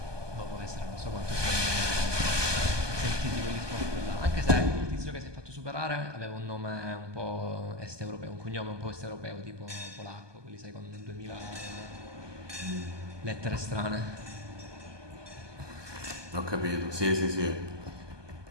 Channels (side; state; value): left; late; 1.2 ms